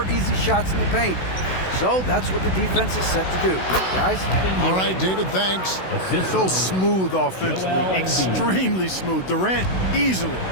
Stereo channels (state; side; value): late; right; 16 ms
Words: easy shots in the paint. So that's what the defense is set to do. Guys? All right, David, thanks. So smooth offensively, extremely smooth. Durant, easily